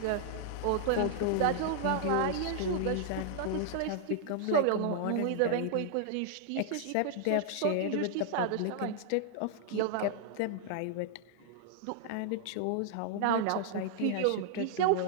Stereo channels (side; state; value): both; different; correlation -0.01